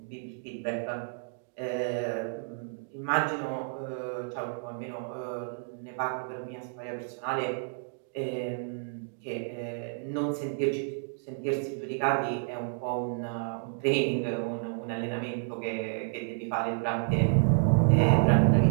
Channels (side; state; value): left; silent; digital silence